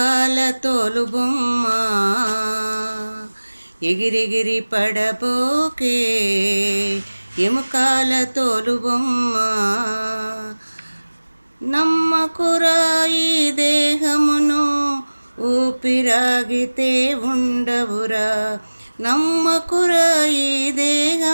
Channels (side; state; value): both; inverted; correlation -1.00